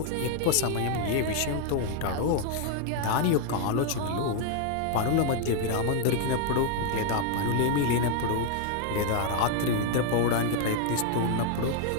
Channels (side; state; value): both; different; correlation 0.00